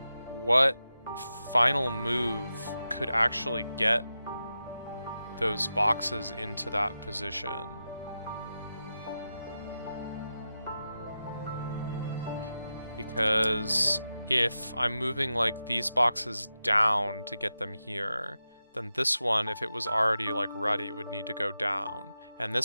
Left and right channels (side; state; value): both; inverted; correlation -0.91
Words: what final move could actually get those boxes into that position. Because if I'm moving, like, these boxes down to get them here, then this one, if it was already, like, ready, would need to go down. And this